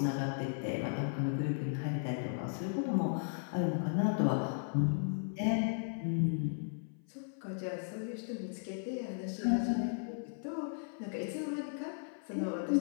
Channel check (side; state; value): right; silent; 54 dB below the other